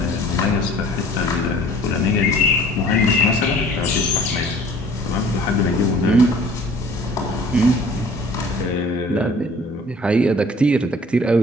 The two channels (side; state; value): both; normal; correlation 0.51